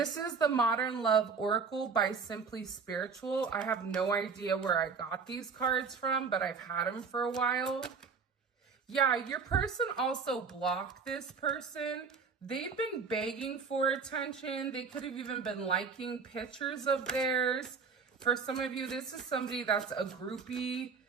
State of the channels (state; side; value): quieter; left; 5.4 dB